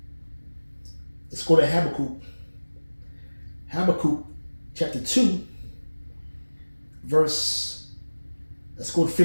Habakkuk. Habakkuk chapter 2, let's go to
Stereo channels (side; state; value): both; inverted; correlation -1.00